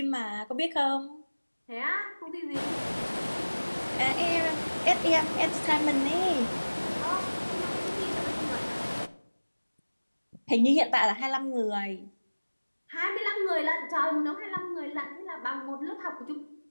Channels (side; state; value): both; inverted; correlation -1.00